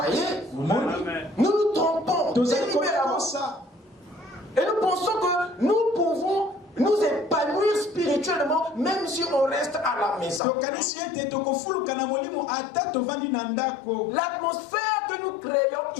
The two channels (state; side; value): drops out; right; at 10.4 s